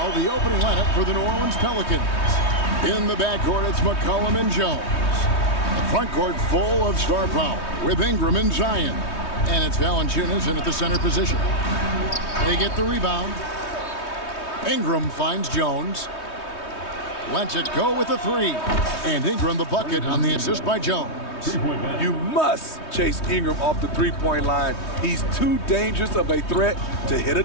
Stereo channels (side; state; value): right; late; 3.2 ms